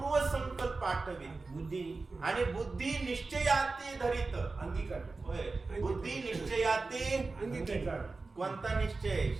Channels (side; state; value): left; quieter; 3.8 dB